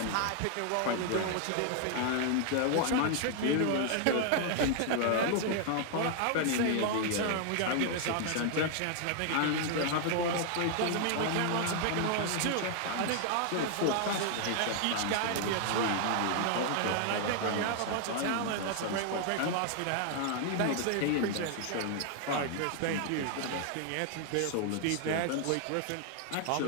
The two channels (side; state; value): both; different; correlation 0.00